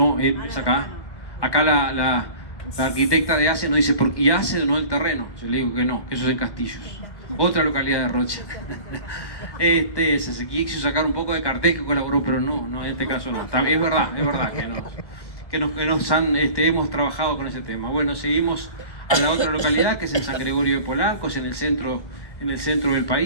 es acá. Acá la arquitecta de ACE nos dice, ¿y ACE no el terreno? Yo le digo que no, que eso es en Castillos. Otra localidad de Rocha. Se quiso sacar un poco de cartel que colaboró, pero no, en este caso no. Es verdad que hemos trabajado con ese tema. Bueno, seguimos a la otra localidad, que es en San Gregorio de Polanco, es en el centro del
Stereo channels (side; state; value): right; late; 1.1 ms